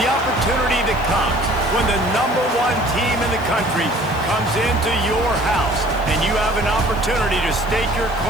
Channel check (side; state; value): right; noise; hiss, 23 dB below the sound